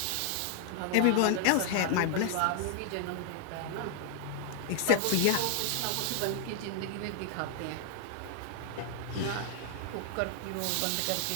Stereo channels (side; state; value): both; different; correlation 0.00